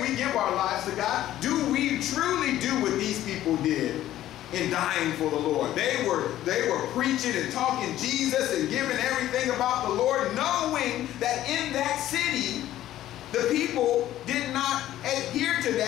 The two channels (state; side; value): quieter; right; 13.4 dB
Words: we give our lives to God, do we truly do what these people did in dying for the Lord. They were preaching and talking Jesus and giving everything about the Lord, knowing that in that city, the people did not adhere to